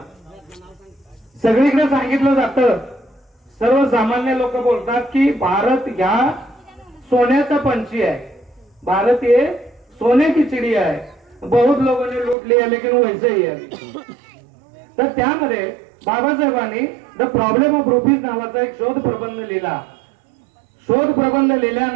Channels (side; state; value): left; drops out; at 12.4 s